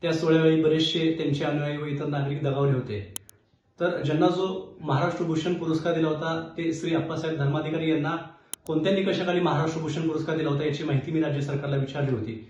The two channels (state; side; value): identical; both; correlation 1.00